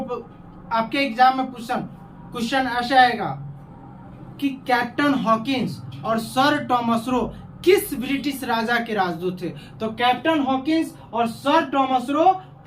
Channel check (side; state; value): both; identical; correlation 1.00